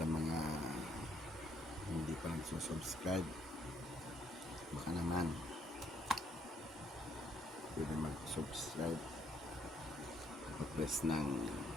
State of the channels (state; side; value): normal; both; correlation 0.69